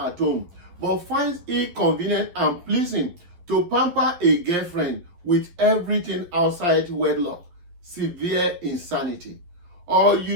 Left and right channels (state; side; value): late; left; 11 ms